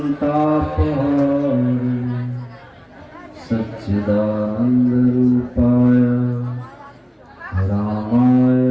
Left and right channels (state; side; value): identical; both; correlation 1.00